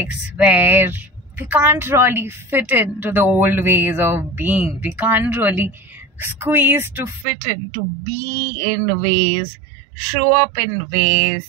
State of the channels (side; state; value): left; drops out; at 7.2 s